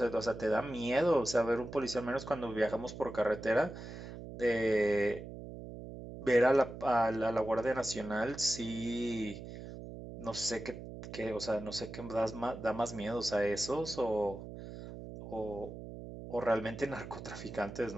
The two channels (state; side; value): noise; right; hum, 11 dB below the sound